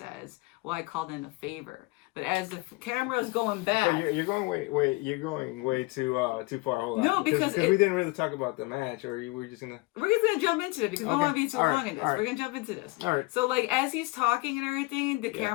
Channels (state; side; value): quieter; right; 22.9 dB